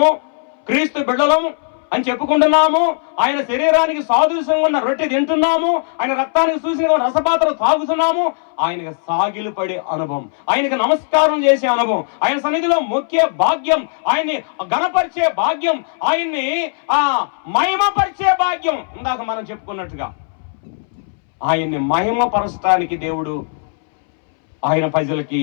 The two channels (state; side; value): silent; right; 66 dB below the other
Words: క్రీస్తు బిడ్డలం అని చెప్పుకుంటున్నాము, ఆయన శరీరానికి సాదృశ్యంగా ఉన్న రొట్టె తింటున్నాము, ఆయన రక్తానికి చూసిన రసపాత్ర తాగుతున్నాము. ఆయనకు సాగిలు పడే అనుభవం, ఆయనకు నమస్కారం చేసే అనుభవం, ఆయన సన్నిధిలో మొక్కే భాగ్యం, ఆయన్ని ఘనపరిచే భాగ్యం, ఆయన్ని మహిమపరిచే భాగ్యం. ఇందాక మనం చెప్పుకున్నట్టుగా ఆయన్ని మహిమపరచడానికి దేవుడు